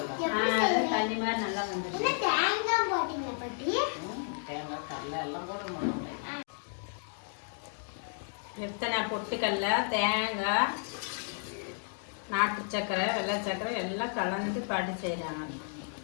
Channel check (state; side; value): silent; right; 56 dB below the other